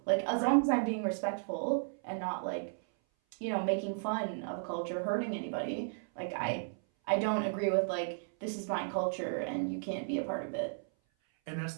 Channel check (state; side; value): silent; left; 55 dB below the other